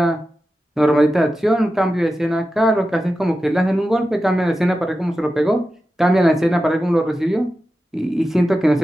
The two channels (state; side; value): normal; both; correlation 0.92